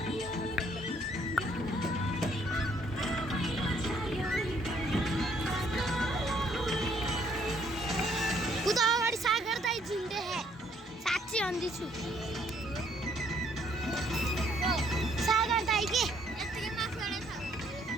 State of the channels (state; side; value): normal; both; correlation 0.66